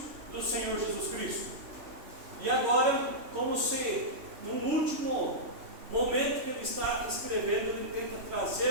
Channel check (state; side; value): late; left; 3.1 ms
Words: do Senhor Jesus Cristo. E agora, como se no último momento que ele está escrevendo, ele tenta